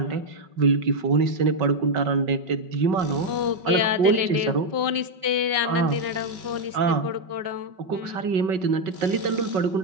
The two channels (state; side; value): late; left; 5.4 ms